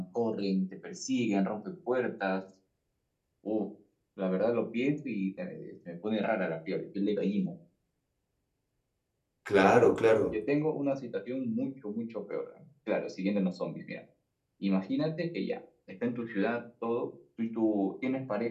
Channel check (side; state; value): both; identical; correlation 1.00